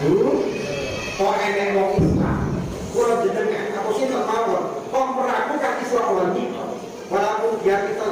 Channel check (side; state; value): both; identical; correlation 1.00